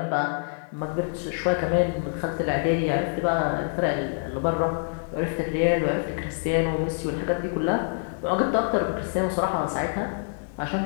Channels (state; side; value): silent; right; 61 dB below the other